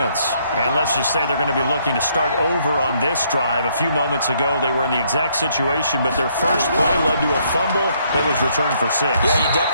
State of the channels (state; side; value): inverted; both; correlation -0.69